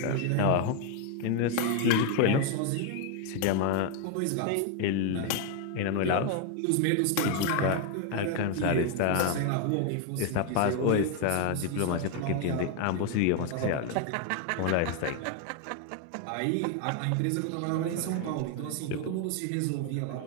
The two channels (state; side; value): different; both; correlation 0.01